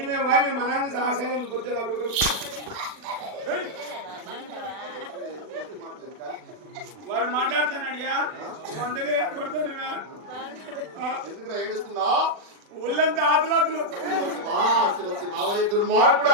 మేము మా నాన్న సహసేన పొద్దున అప్పుడు వాడు మాట్లాడుతున్నాడియా వందగా కొడతానువా ఎందుకు ఏడుస్తున్నా ఒళ్ళంతా ఆతులాతులు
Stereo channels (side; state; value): left; late; 40 ms